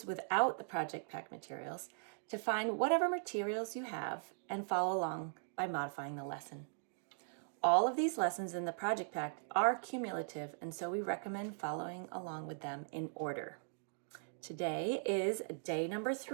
without the project pack materials, to find whatever materials you have and follow along by modifying the lesson. All of these lessons in the project pack are cumulative, and so we recommend following along with them in order. Today is day number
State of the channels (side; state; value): left; silent; digital silence